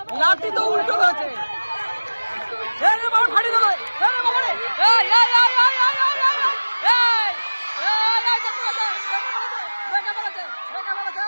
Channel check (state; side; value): inverted; both; correlation -1.00